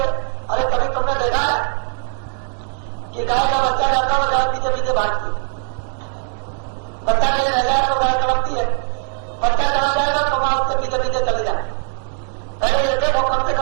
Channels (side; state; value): left; silent; digital silence